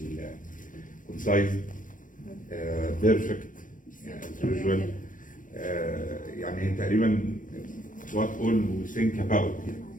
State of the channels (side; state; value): right; late; 0.38 ms